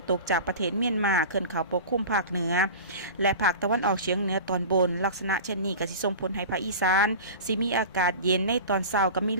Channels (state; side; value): inverted; both; correlation -0.34